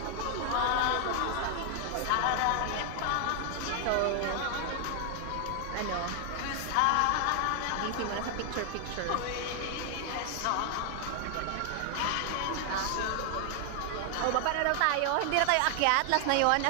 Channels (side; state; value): both; different; correlation 0.00